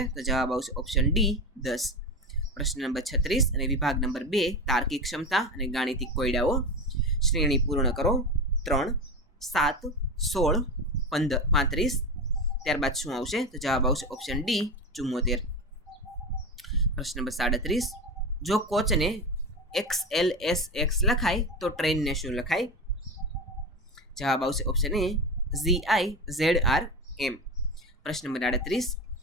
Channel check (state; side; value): normal; both; correlation 0.22